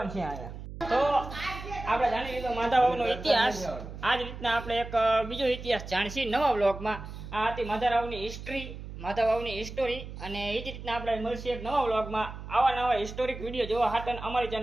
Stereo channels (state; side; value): noise; right; hum, 11 dB below the sound